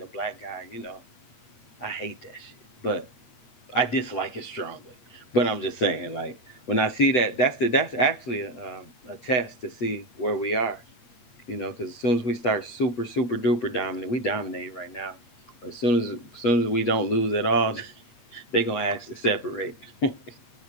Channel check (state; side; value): late; right; 8.5 ms